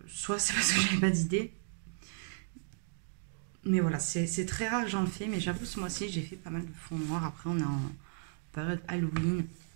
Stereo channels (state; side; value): silent; left; digital silence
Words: soit c'est parce que j'avais pas d'idée. Mais voilà, c'est très rare que j'en fais, mais j'avoue, ce mois-ci, j'ai fait pas mal de fond noir. Après, on est en période Halloween,